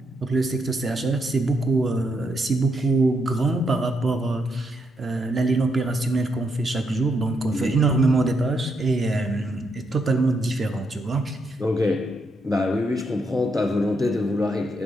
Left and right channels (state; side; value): normal; both; correlation 0.78